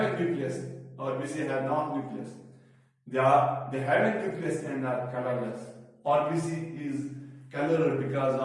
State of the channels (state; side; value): identical; both; correlation 1.00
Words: a nucleus. RBC have no nucleus. They have a nucleus and are colorless. RBC is colored because